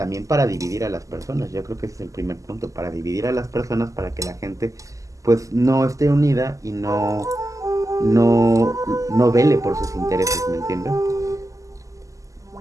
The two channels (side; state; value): left; late; 0.16 ms